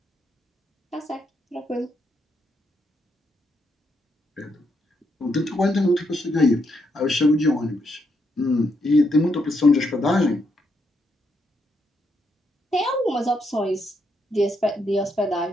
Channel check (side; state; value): both; normal; correlation 0.78